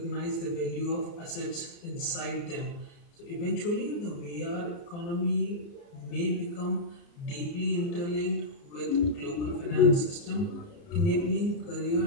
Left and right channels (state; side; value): late; right; 29 ms